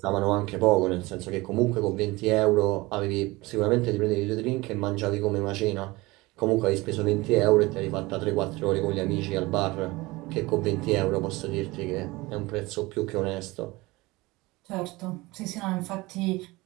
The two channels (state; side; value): quieter; left; 21.7 dB